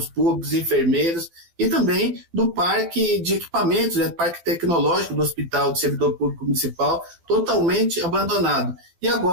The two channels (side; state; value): left; late; 12 ms